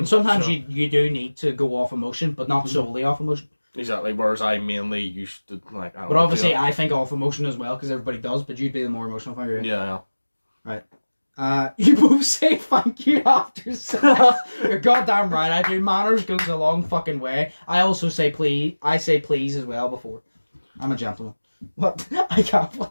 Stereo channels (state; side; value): inverted; both; correlation -1.00